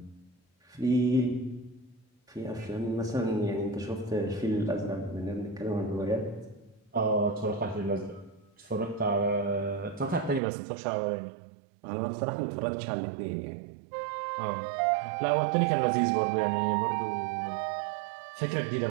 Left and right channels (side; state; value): left; drops out; at 10.4 s